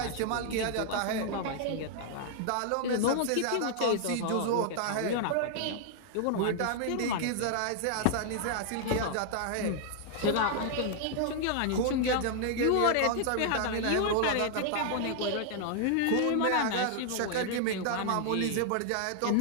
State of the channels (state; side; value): different; both; correlation 0.00